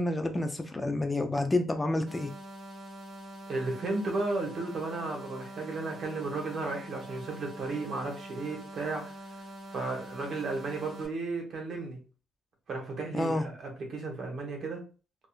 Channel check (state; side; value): normal; both; correlation 0.80